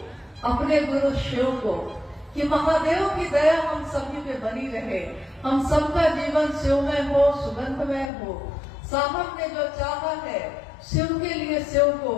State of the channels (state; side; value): drops out; right; at 8.1 s